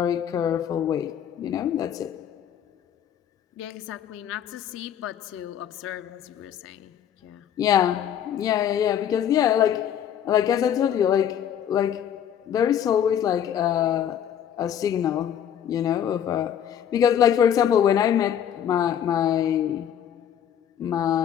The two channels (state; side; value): quieter; right; 9.5 dB